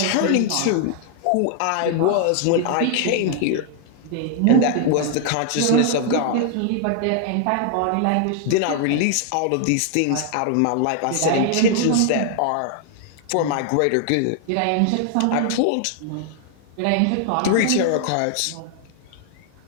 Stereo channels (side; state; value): both; different; correlation 0.00